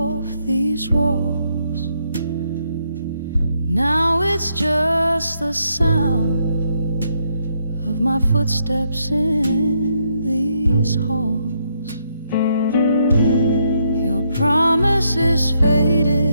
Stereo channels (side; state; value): both; inverted; correlation -0.76